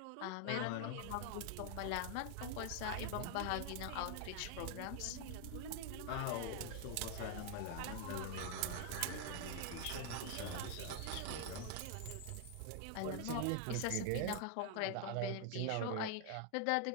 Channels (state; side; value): different; both; correlation 0.00